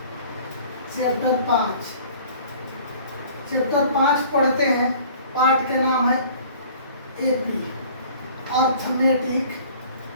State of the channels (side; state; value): both; inverted; correlation -0.49